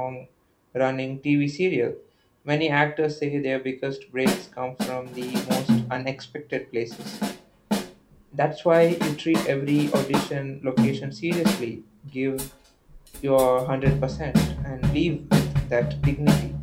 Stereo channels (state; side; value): identical; both; correlation 1.00